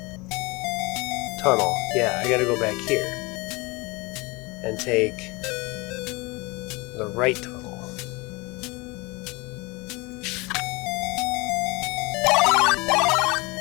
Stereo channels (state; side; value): quieter; right; 25.5 dB